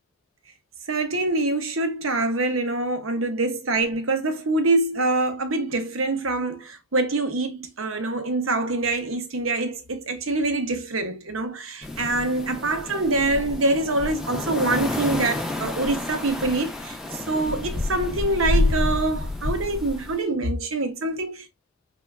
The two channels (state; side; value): normal; both; correlation 0.05